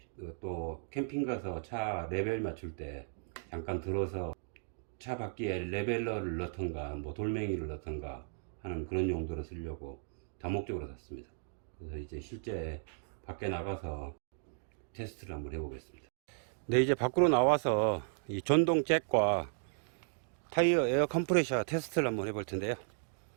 또 캠핑 가서 차 레벨 맞출 때 잠깐 들어서 차 바퀴에 레벨러를 넣던가 뭐 돌멩이를 넣던가 하는 그런 용도로 쓰려고 다목적으로 샀습니다. 그래서 이제 실제 밖에 나가서 테스트를 한번 해보겠습니다. 네, 이제 밖으로 나와서 이 전동 잭과 타이어 에어 컴프레셔 테스트를 한번 해볼 텐데요.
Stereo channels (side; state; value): left; silent; digital silence